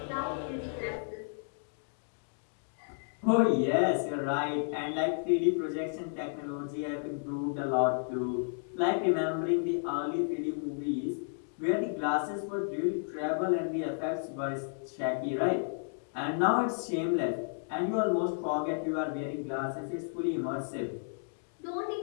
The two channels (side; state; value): right; silent; digital silence